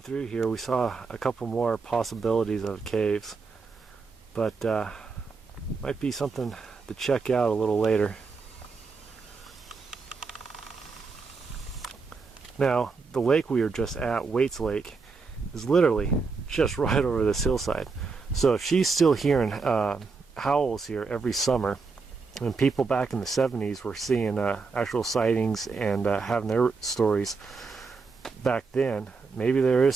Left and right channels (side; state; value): left; quieter; 4.6 dB